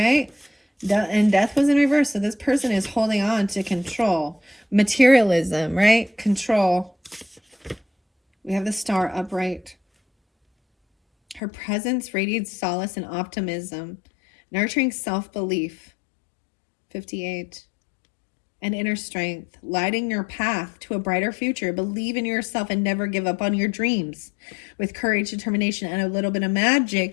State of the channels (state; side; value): drops out; right; at 11.4 s